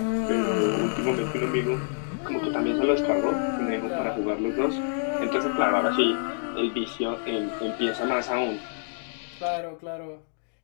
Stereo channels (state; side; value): silent; right; digital silence